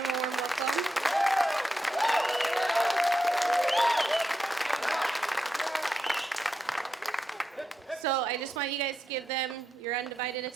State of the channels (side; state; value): both; normal; correlation 0.86